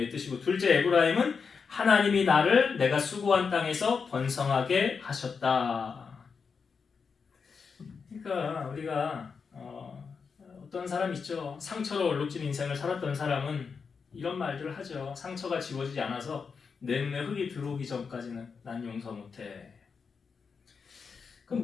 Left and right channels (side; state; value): right; quieter; 5.6 dB